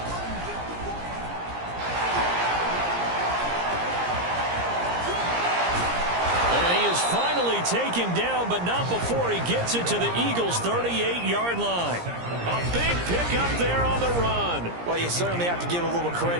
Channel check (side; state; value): left; late; 17 ms